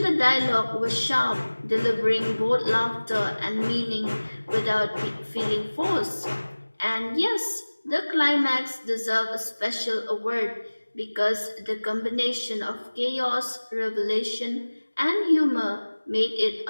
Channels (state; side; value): inverted; both; correlation -1.00